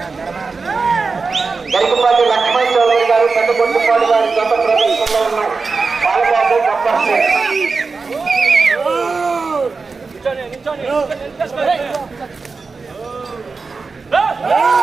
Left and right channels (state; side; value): quieter; left; 4.4 dB